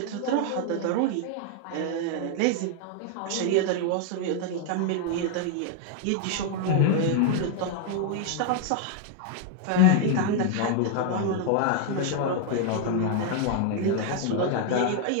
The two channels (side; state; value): both; different; correlation 0.00